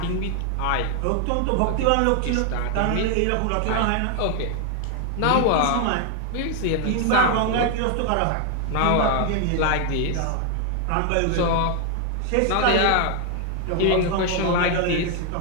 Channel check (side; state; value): both; different; correlation 0.00